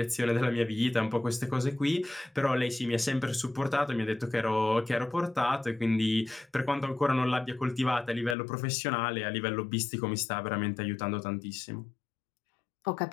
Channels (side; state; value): right; drops out; at 8.3 s